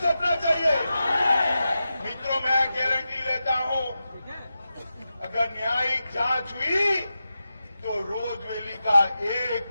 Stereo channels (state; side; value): inverted; both; correlation -0.91